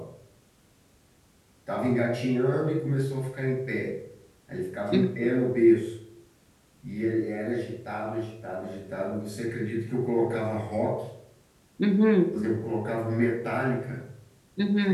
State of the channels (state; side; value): identical; both; correlation 1.00